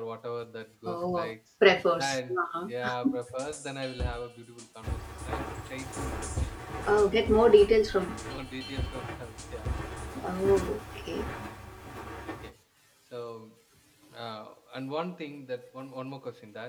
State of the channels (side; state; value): both; identical; correlation 1.00